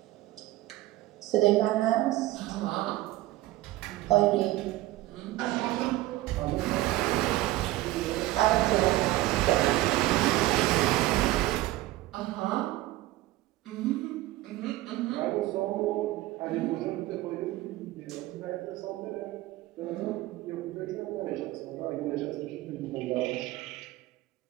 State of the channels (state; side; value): quieter; left; 17.0 dB